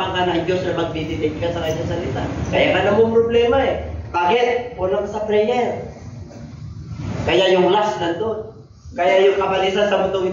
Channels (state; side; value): identical; both; correlation 1.00